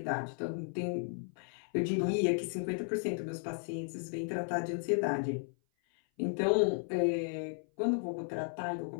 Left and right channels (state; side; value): silent; right; 55 dB below the other